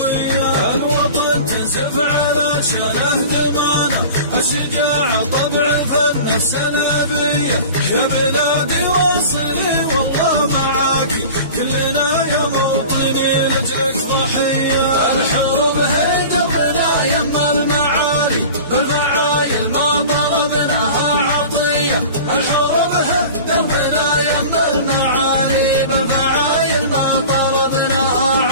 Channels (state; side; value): inverted; both; correlation -0.38